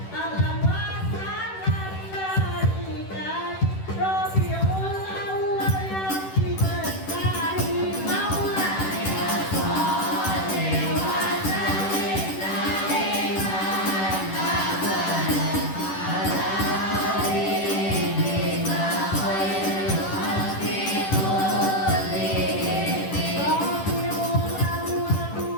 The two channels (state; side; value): late; right; 10 ms